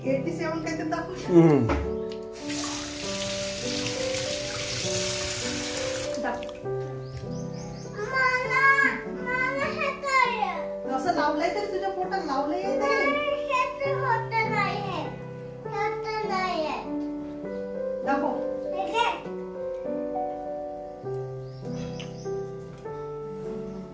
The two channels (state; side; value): identical; both; correlation 1.00